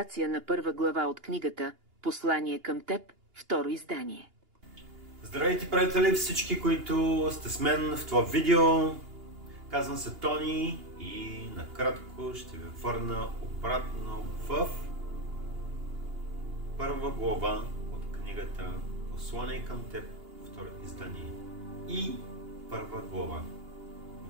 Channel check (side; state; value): left; late; 2.8 ms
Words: на първа глава от книгата «Послание към теб», второ издание. Здравейте, приятели, всички, които сте с мен в това видео. Казвам се Тони и накратко ще ви върна обратно в първа глава от книгата «Послание към теб», второ издание. И първа глава.